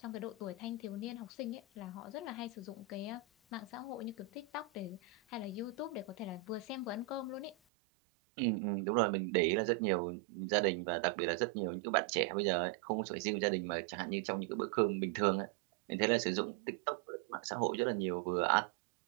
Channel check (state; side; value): drops out; left; at 7.6 s